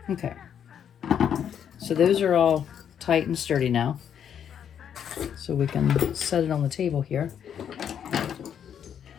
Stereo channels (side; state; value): right; quieter; 8.7 dB